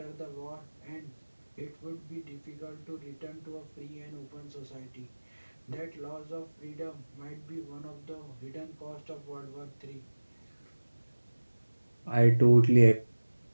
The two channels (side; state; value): both; inverted; correlation -1.00